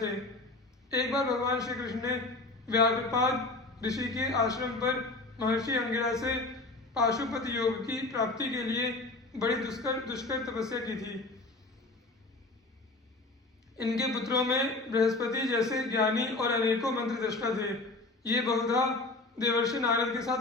एक बार भगवान श्री कृष्ण ने व्याघ्रपाद ऋषि के आश्रम पर महर्षि अंगिरा से पाशुपत योग की प्राप्ति के लिए बड़ी दुष्कर तपस्या की थी। इनके पुत्रों में बृहस्पति जैसे ज्ञानी और अनेकों मंत्र दृष्टा थे। ये बहुधा देवर्षि नारद के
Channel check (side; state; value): right; quieter; 3.2 dB